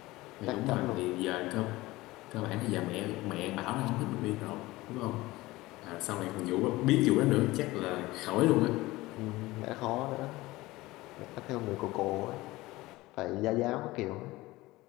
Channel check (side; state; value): right; quieter; 19.4 dB